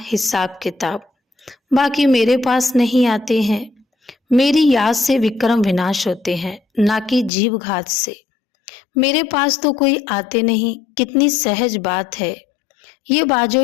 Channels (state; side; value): drops out; right; at 7.3 s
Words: हिसाब किताब। बाकी मेरे पास नहीं आते हैं। मेरी याद से विक्रम विनाश होते हैं, ना कि जीव घात से। मेरे पास तो कोई आते नहीं। कितनी सहज बात है। ये